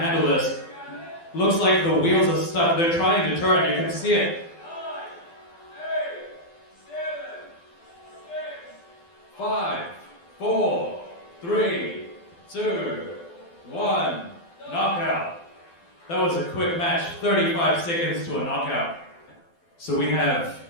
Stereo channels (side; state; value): right; late; 12 ms